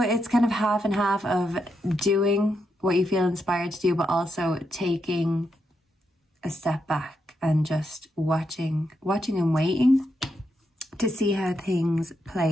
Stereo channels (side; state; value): both; normal; correlation 0.82